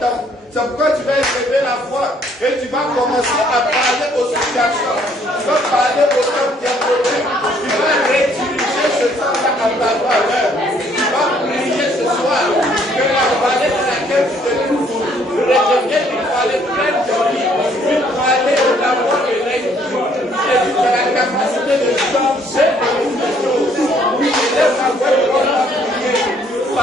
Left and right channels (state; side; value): normal; both; correlation 0.64